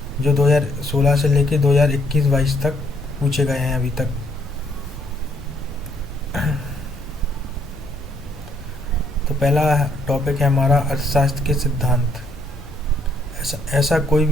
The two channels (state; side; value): normal; both; correlation 0.69